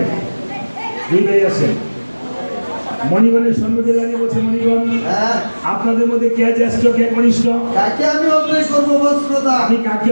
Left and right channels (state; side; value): inverted; both; correlation -1.00